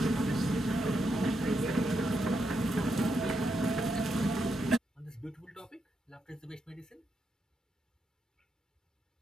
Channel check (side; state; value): both; normal; correlation 0.82